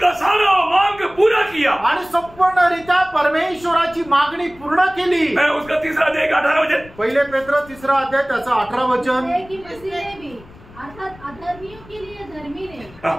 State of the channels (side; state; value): left; noise; rumble, 22 dB below the sound